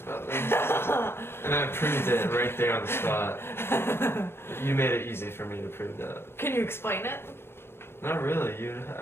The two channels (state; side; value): late; right; 0.11 ms